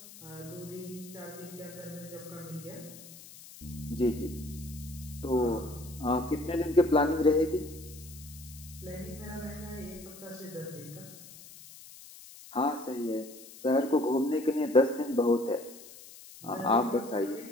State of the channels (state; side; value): noise; left; hiss, 18 dB below the sound